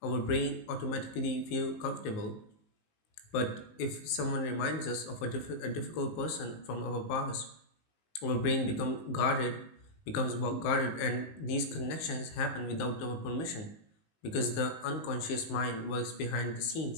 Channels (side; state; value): right; late; 19 ms